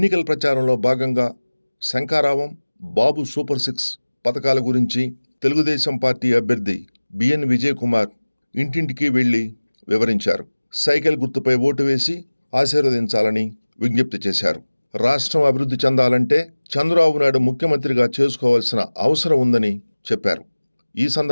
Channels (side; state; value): both; inverted; correlation -1.00